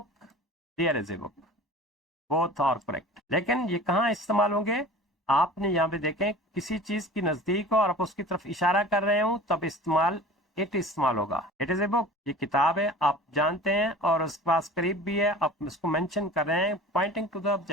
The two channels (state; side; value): normal; both; correlation 0.40